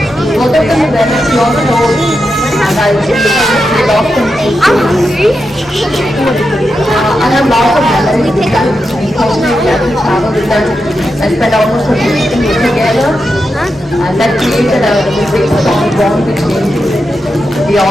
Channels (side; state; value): both; normal; correlation 0.87